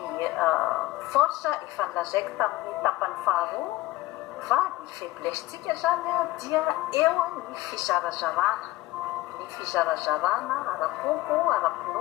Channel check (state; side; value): quieter; right; 17.6 dB